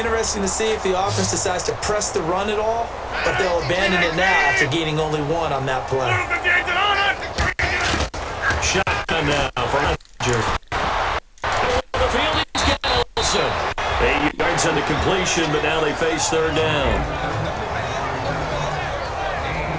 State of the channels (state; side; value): identical; both; correlation 1.00